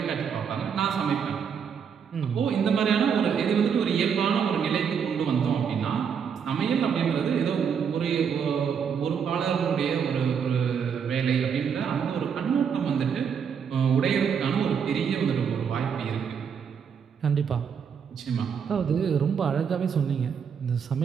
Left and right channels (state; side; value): quieter; left; 7.1 dB